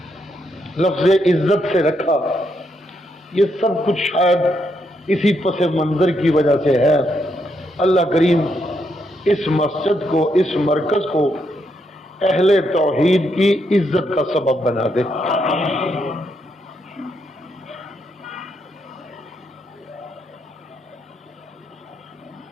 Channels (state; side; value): normal; both; correlation 0.78